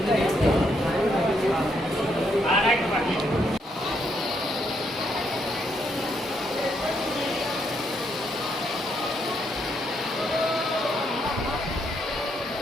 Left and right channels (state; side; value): normal; both; correlation 0.75